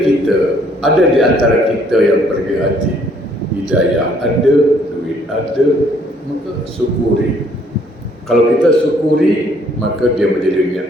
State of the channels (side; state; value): both; normal; correlation 0.64